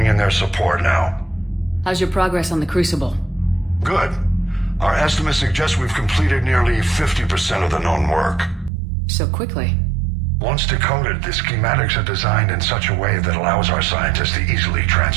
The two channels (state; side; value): drops out; left; at 8.7 s